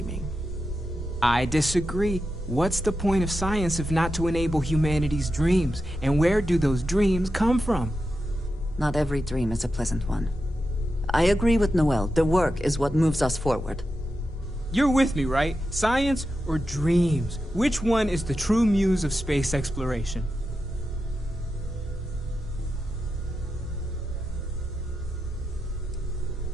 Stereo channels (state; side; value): normal; both; correlation 0.89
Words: I disagree. What's the point of science if not to enable humanity's dreams? And where do those dreams come from? Not every dream is a pleasant one. I agree with Noel. The work is what moves us forward. You're with me, right? Science or dreams? Which one is the true muse of space exploration?